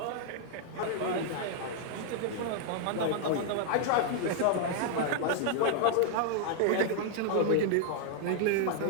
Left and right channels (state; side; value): different; both; correlation -0.01